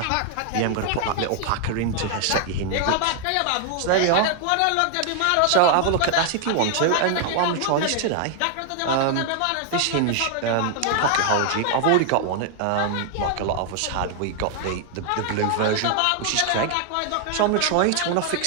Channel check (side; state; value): both; different; correlation 0.00